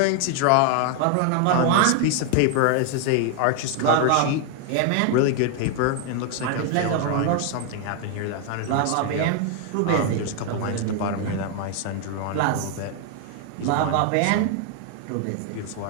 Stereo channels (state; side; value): different; both; correlation 0.00